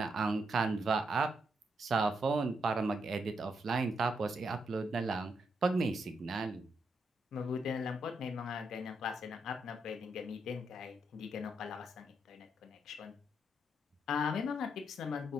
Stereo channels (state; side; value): normal; both; correlation 0.80